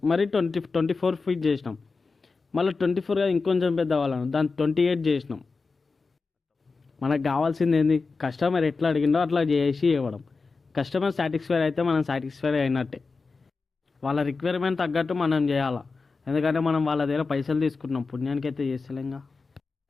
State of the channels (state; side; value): quieter; right; 4.3 dB